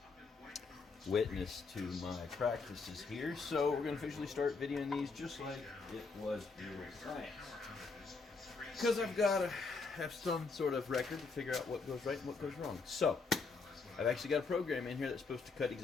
witness to my practices here, so we're going to officially start videoing these just like it was real science. Because I've got to have some sort of record to figure out what goes right and what goes wrong. So, I've actually got a program in here that's supposed to cut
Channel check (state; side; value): quieter; right; 4.4 dB